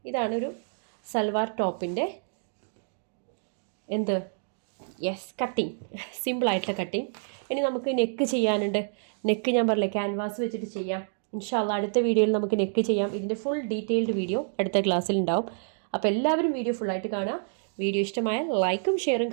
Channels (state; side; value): silent; left; digital silence